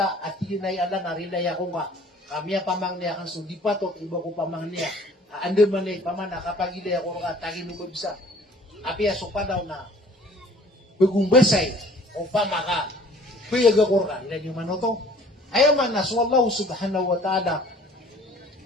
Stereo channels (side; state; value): both; normal; correlation 0.52